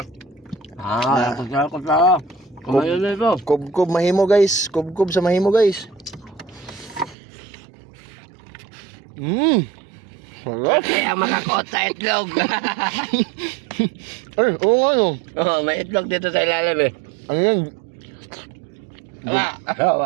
Kutsara. Kumain na ito. Kubkub mahimo guys, kubkub sa mahimo guys. Sarap. Kasi ang makakot sa itlog. Ay, oo nga no. Oh, may itlog dito sa ilalim eh. Ano yan? Wala.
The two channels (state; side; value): drops out; left; at 7.2 s